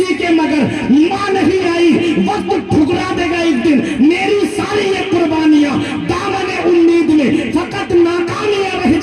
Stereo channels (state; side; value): identical; both; correlation 1.00